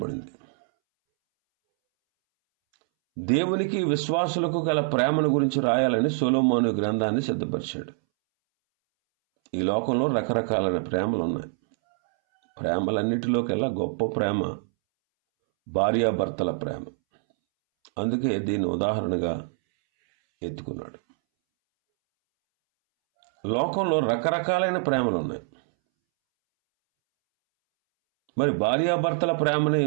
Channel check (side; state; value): left; silent; 62 dB below the other